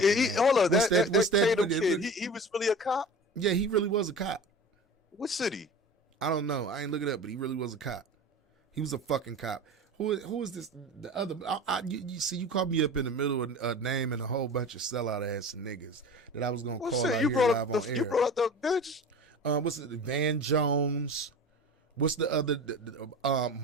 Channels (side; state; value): both; normal; correlation 0.35